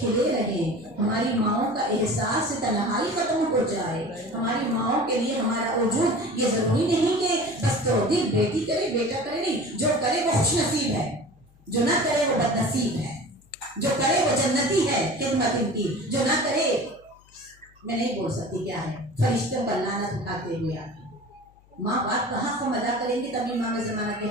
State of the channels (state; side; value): noise; left; hum, 29 dB below the sound